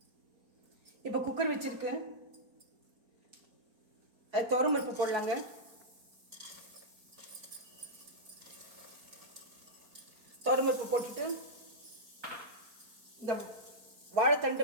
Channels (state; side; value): late; left; 4.3 ms